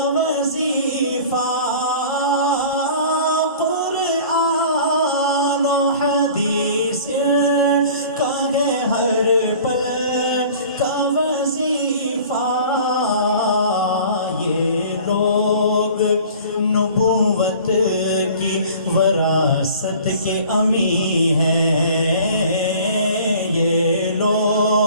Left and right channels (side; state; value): both; inverted; correlation -0.45